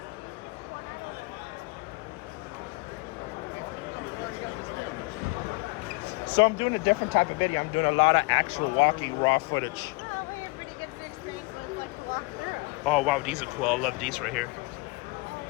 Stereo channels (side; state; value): right; quieter; 26.2 dB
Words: So I'm doing a different type of video. I'm doing a lot of actual walking raw footage. Oh, we have pretty good experience when it's like to walk through. Oh, wow. These are cool. I love these right here.